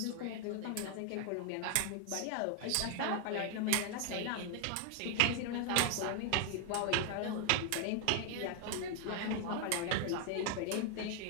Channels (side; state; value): both; different; correlation 0.00